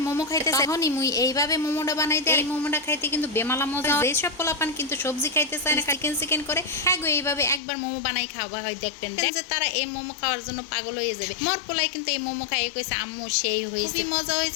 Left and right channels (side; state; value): right; drops out; at 7.6 s